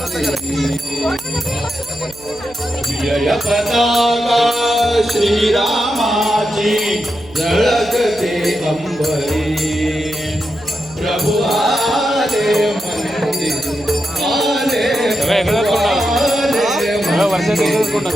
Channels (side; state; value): right; noise; hum, 21 dB below the sound